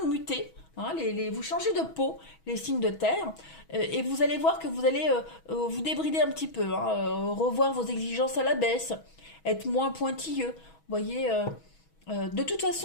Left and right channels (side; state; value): right; late; 6.2 ms